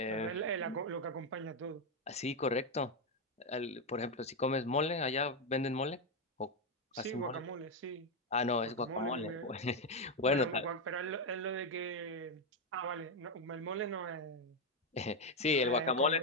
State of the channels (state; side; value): normal; both; correlation 0.05